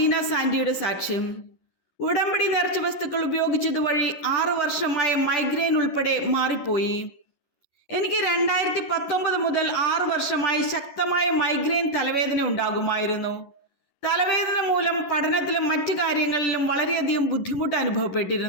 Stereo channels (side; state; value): right; late; 11 ms